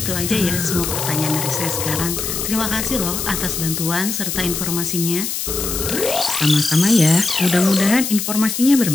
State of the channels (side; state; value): left; noise; hiss, 3 dB below the sound